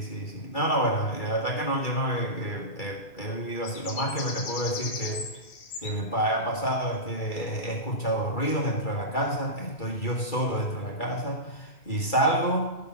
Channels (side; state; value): right; late; 2.3 ms